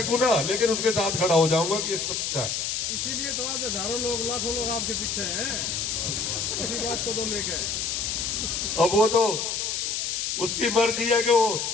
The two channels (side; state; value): left; noise; hiss, 1 dB below the sound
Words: ना, लेकिन उसके साथ खड़ा हो जाऊंगा कि ये सच्चा है। इसीलिए तो आज हजारों लोग लाखों लोग आपके पीछे हैं, इसी बात को तो लेके। अब वो तो उसकी मर्जी है कि वो